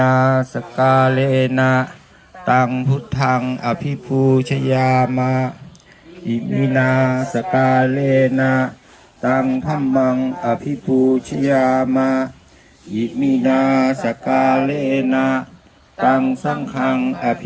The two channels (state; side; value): identical; both; correlation 1.00